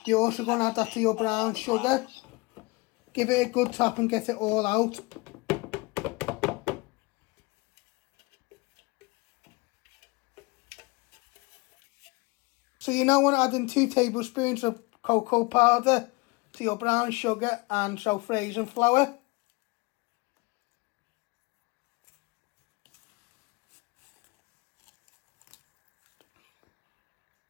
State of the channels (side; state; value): right; quieter; 25.4 dB